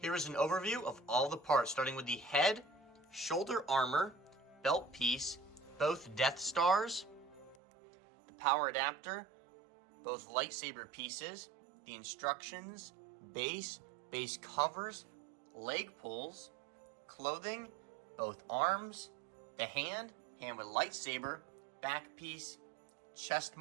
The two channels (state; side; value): drops out; left; at 7.6 s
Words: is an overview of all the parts, starting with the head shoulder armor, belt piece, both Death Stars, the power adapter, both lightsaber pieces, the instructions, base covers, leg pulls, clothing, both arms, the hand with lightsaber, back piece, chest